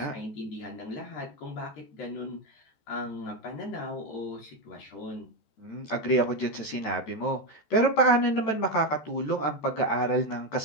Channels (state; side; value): late; right; 14 ms